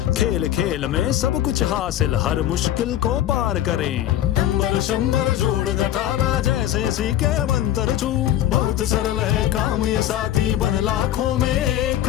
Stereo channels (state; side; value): quieter; right; 12.3 dB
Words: खेल खेल में सब कुछ हासिल, हर मुश्किल को पार करें। नंबर शंबर जोड़ घटाना, जैसे सीखे मंत्र छू। बहुत सरल है काम ये साथी, बन लाखों में एक